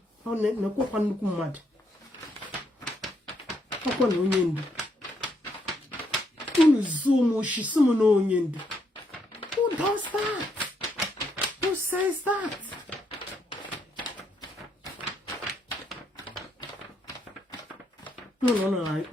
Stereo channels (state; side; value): normal; both; correlation 0.75